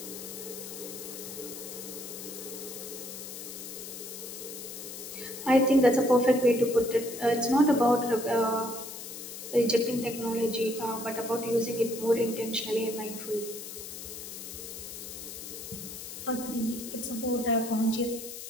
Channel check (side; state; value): left; noise; hiss, 10 dB below the sound